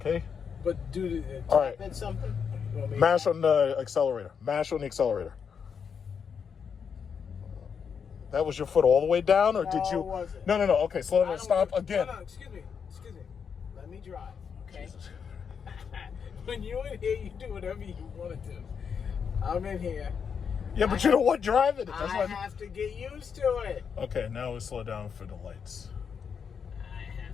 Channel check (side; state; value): right; quieter; 6.7 dB